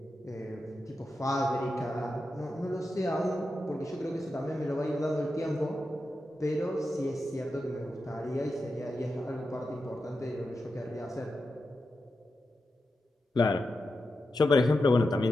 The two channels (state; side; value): normal; both; correlation 0.89